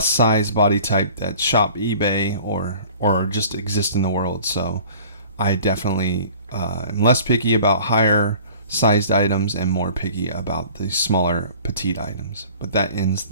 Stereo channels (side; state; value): both; inverted; correlation -0.47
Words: size body type that shop eBay or just exist in the world. So I definitely am less picky about higher sized items and more picky about the smaller petite items. But that ends